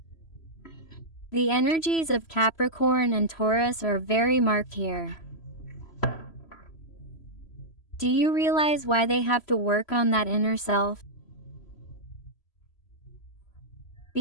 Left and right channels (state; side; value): late; right; 3.0 ms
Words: The energies of Capricorn and Taurus are very marked here. Do you realize why they have to work on that inner self?